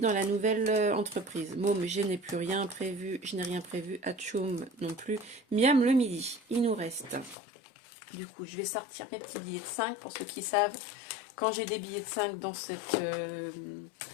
la nouvelle entreprise. Môme, je n'ai plus rien prévu. Je n'ai rien prévu. Atchoum non plus. Miam le midi. Il nous reste... Du coup, je vais sortir mes petits billets de 5 pour ceux qui savent. Quand j'ai des billets de 5 dans cette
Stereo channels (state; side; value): drops out; right; at 7.4 s